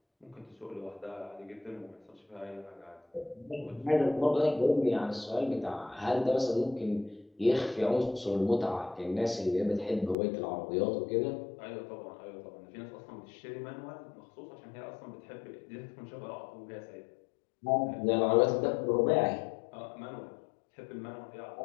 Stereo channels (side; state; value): right; drops out; at 10.2 s